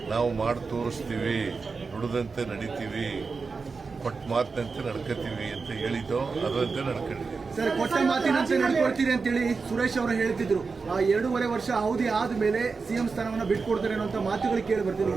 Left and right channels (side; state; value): left; quieter; 4.6 dB